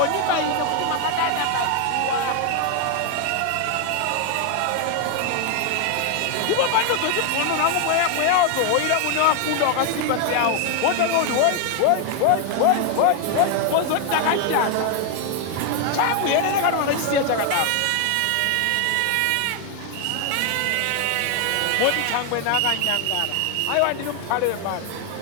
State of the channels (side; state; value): both; different; correlation 0.01